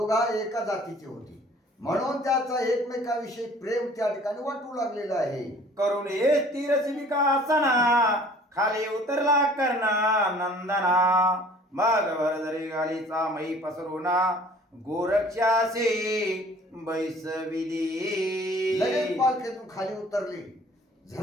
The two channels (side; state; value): both; normal; correlation 0.51